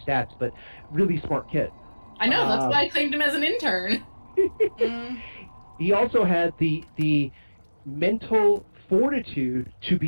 but really smart kid. I know, that's why I claimed him as an intern. He also had the mental fortitude to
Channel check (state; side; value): inverted; both; correlation -1.00